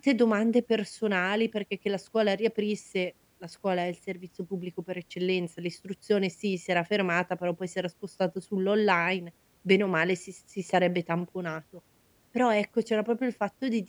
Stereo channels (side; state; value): both; identical; correlation 1.00